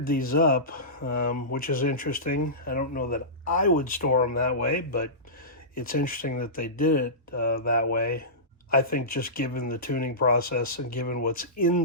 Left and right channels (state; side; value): normal; both; correlation -0.20